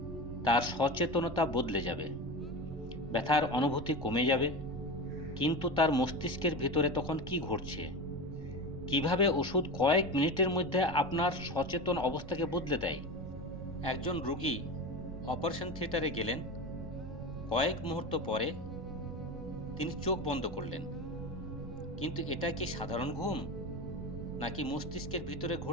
তার সচেতনতা বদলে যাবে, ব্যথার অনুভূতি কমে যাবে। কিন্তু তার মস্তিষ্কের ভিতরে তখন কি ঘটছে? কিভাবে ওষুধ কয়েক মিনিটের মধ্যে আপনার সচেতন অবস্থাকে বদলে দেয়? একজন রোগী অপারেশন থিয়েটারে গেলেন, কয়েক মুহূর্ত পরে তিনি চোখ বন্ধ করলেন। কিন্তু এটা কি সাধারণ ঘুম, নাকি মস্তিষ্কের ভিতরে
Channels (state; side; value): noise; right; rumble, 11 dB below the sound